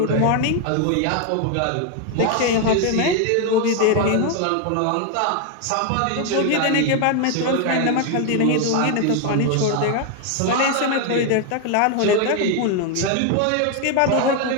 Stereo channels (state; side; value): different; both; correlation 0.01